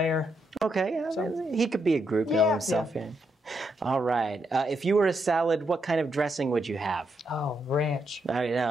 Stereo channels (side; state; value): both; normal; correlation 0.80